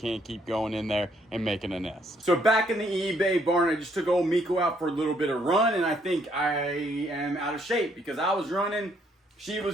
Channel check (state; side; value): normal; both; correlation 0.69